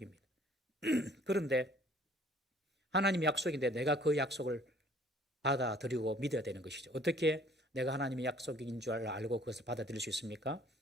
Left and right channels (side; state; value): both; normal; correlation 0.56